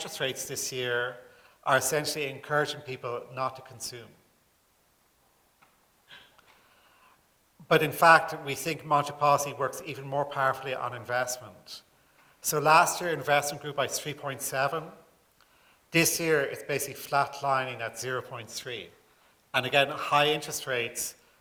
rates this year are essentially encouraging people not to consume. But in fact, we think monetary policy works even more powerfully on investment. So last year, investment grew by 3.7. This year, it's basically flatlining at 0.3. And again, high interest rates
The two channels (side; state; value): both; identical; correlation 1.00